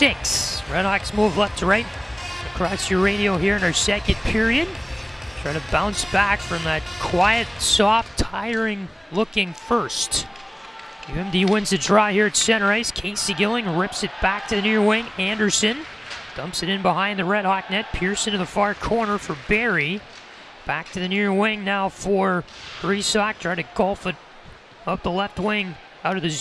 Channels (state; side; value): normal; both; correlation 0.98